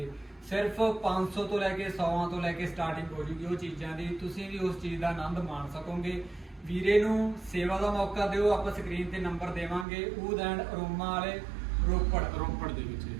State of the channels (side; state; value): left; drops out; at 9.9 s